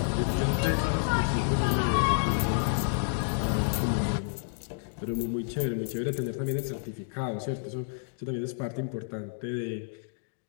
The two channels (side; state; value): right; silent; digital silence